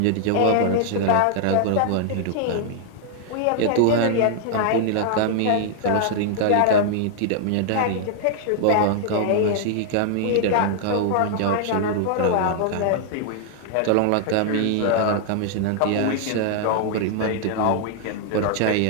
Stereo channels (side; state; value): both; different; correlation -0.01